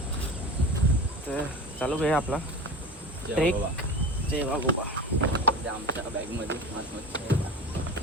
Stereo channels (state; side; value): normal; both; correlation 0.32